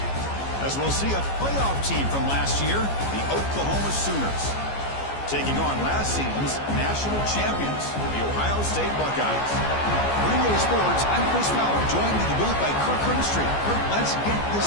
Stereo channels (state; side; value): late; right; 14 ms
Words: As we'll see a playoff team from last year, the Oklahoma Sooners, taking on last season's national champions, the Ohio State Buckeyes. For EA Sports, I'm Chris Fowler, joined in the booth by Kirk Herbstreit. Kirk, let's get